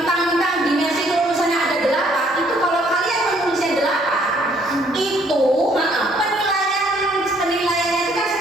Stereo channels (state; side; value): normal; both; correlation 0.64